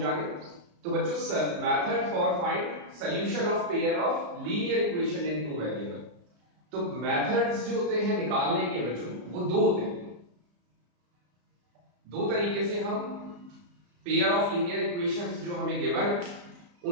तो बच्चों, method for find solution of pair of linear equation in two variable. तो मेथड्स जो होते हैं निकालने के बच्चों वो दो होते हैं। दो तरीके से हम पेयर ऑफ लीनियर इक्वेशंस जो हमें गिवन है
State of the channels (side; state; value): left; late; 34 ms